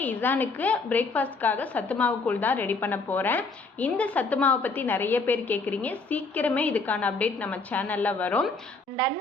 இசானுக்கு பிரேக்ஃபாஸ்ட்காக சத்து மாவு கூழ் தான் ரெடி பண்ண போகிறேன். இந்த சத்து மாவை பற்றி நிறைய பேர் கேட்குறீங்க. சீக்கிரமே இதுக்கான அப்டேட் நம்ம சேனலில் வரும். அண்ட்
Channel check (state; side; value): quieter; right; 3.8 dB